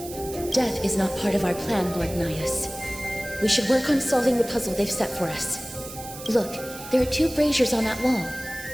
Death is not part of our plan, Lord Nias. We should work on solving the puzzle they've set for us. Look, there are 2 braziers on that wall.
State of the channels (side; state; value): right; noise; hiss, 13 dB below the sound